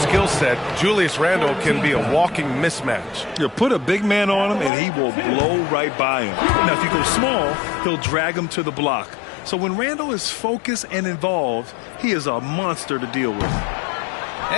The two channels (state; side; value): drops out; right; at 4.7 s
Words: set, Julius Randle can be a walking mismatch. You put a big man on him, and he will blow right by him. Now, if you go small, he'll drag him to the block. So when Randle is focused and involved, he is a monster to deal with.